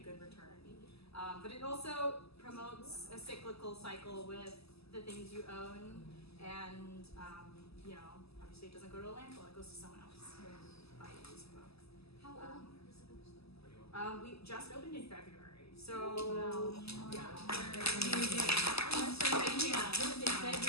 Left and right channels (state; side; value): late; right; 0.78 ms